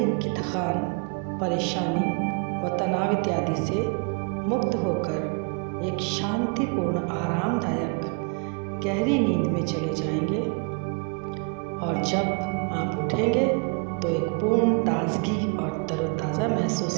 की थकान, परेशानी व तनाव इत्यादि से मुक्त होकर एक शांतिपूर्ण आरामदायक गहरी नींद में चले जाएंगे और जब आप उठेंगे तो एक पूर्ण ताजगी और तरोताज़ा महसूस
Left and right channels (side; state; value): left; quieter; 34.5 dB